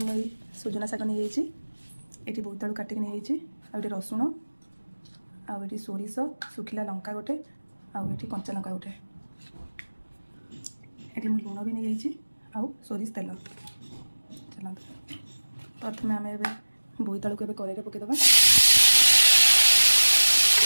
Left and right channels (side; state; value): both; inverted; correlation -1.00